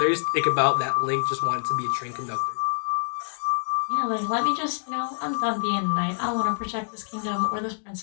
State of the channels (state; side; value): silent; right; digital silence